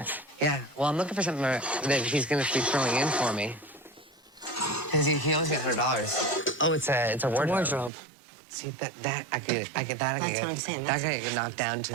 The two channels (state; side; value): drops out; left; at 7.9 s